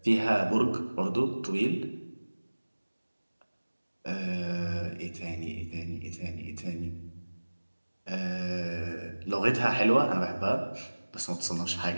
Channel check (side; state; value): both; inverted; correlation -1.00